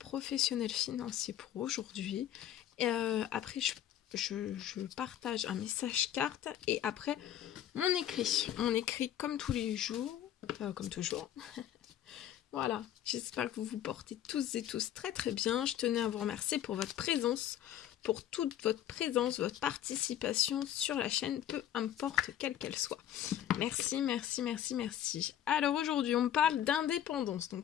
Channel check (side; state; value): right; quieter; 11.2 dB